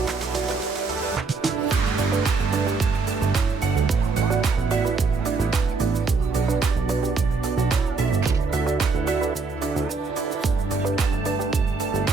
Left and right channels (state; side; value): quieter; left; 4.1 dB